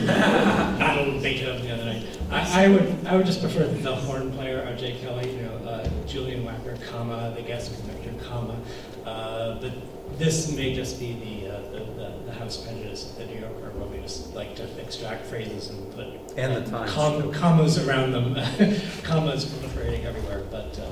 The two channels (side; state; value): both; identical; correlation 1.00